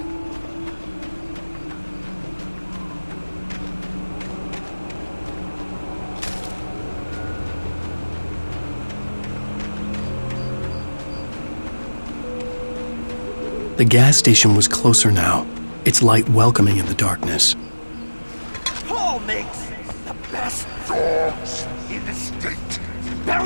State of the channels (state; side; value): inverted; both; correlation -1.00